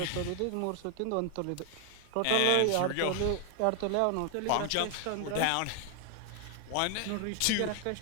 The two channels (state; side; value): different; both; correlation 0.00